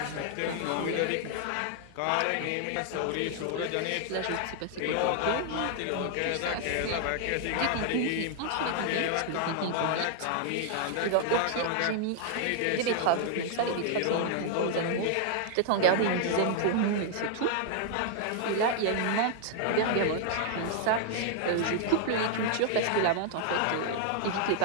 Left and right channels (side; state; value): both; different; correlation 0.00